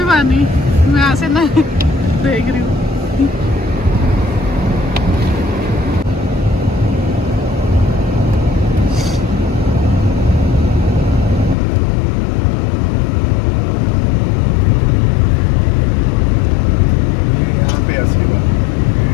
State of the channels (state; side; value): drops out; right; at 11.6 s